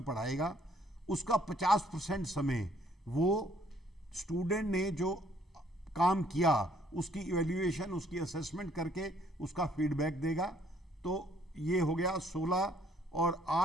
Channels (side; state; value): both; normal; correlation 0.64